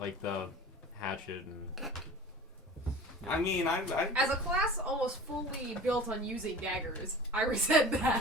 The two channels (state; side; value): normal; both; correlation 0.38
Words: the hatchet and. I mean, I As a class almost fully built on using daggers, I resent